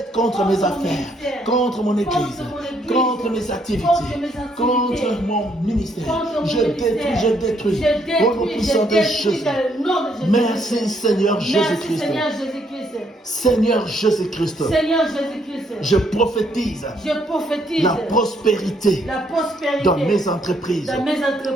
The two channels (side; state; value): both; normal; correlation 0.71